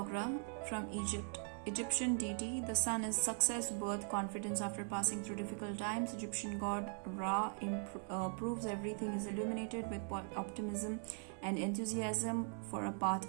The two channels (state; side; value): silent; left; 51 dB below the other